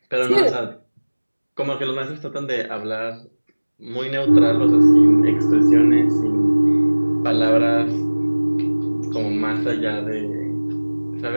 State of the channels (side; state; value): both; inverted; correlation -1.00